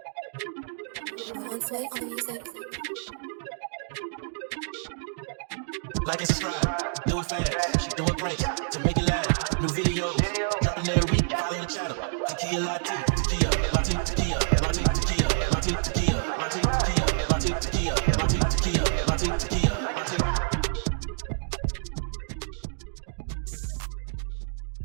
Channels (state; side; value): silent; left; digital silence